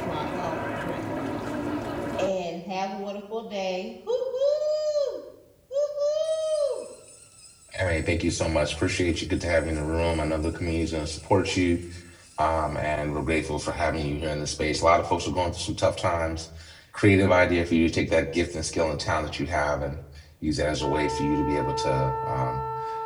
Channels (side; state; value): both; identical; correlation 1.00